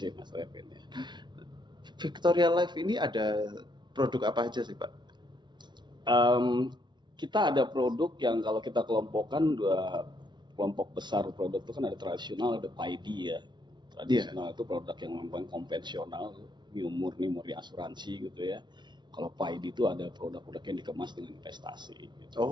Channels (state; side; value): late; left; 0.21 ms